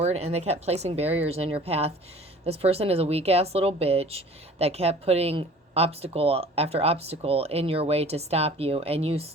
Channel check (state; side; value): normal; both; correlation 0.47